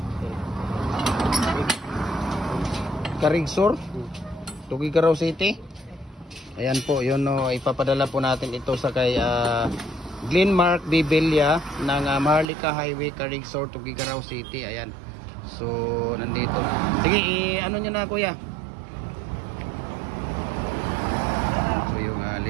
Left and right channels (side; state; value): left; drops out; at 12.5 s